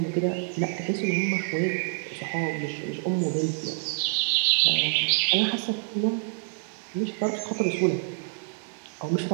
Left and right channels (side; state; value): left; silent; digital silence